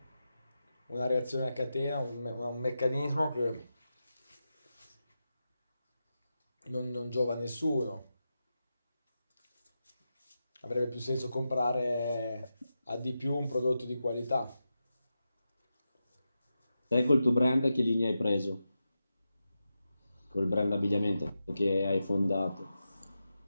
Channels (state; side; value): inverted; both; correlation -0.90